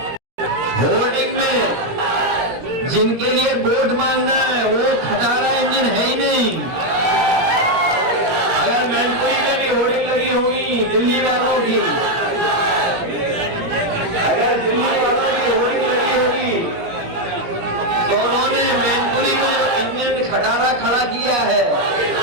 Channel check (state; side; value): late; left; 17 ms